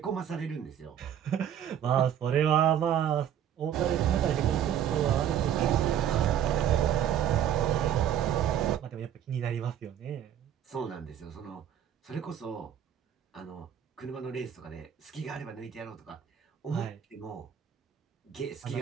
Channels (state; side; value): quieter; left; 9.8 dB